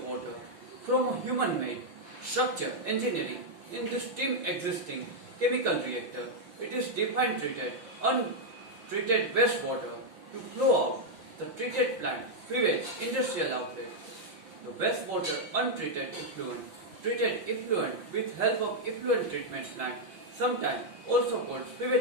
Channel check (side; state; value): left; late; 5.8 ms